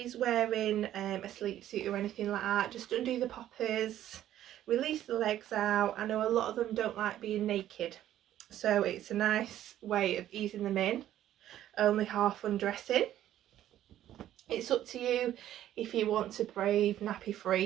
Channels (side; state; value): left; quieter; 12.3 dB